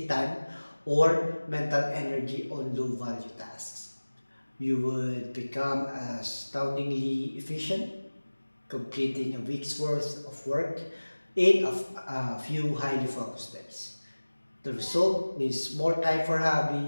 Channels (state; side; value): inverted; both; correlation -1.00